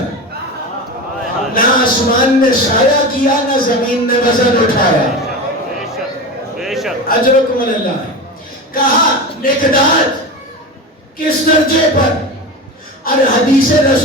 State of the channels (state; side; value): normal; both; correlation 0.26